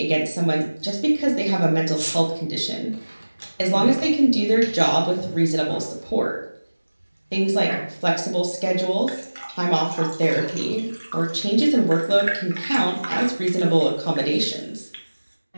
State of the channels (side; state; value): both; inverted; correlation -1.00